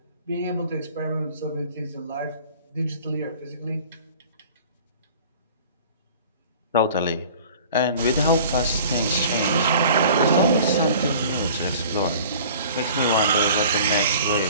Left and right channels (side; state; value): both; inverted; correlation -0.46